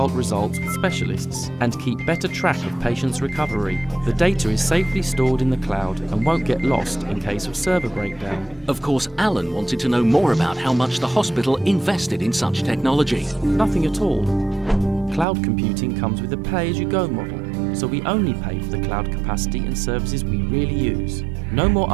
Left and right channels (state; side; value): drops out; left; at 15.2 s